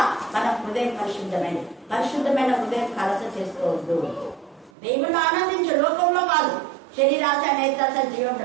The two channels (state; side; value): drops out; left; at 4.7 s